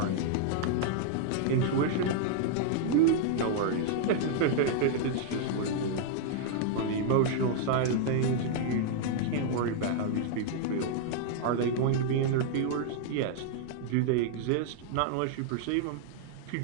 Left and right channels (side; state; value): both; different; correlation -0.01